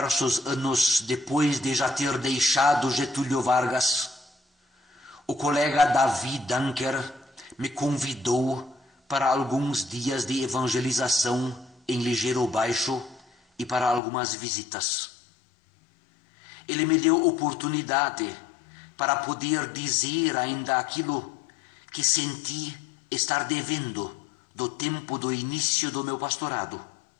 anos depois de já ter deixado Getúlio Vargas, o colega Davi Dunker me convidou para alguns dias de evangelização em Ligeiro Baixo e para algumas visitas. Ele me deu oportunidade para poder dizer ainda aquilo que senti estar devendo do tempo do início do meu pastorado,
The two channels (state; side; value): drops out; right; at 14.0 s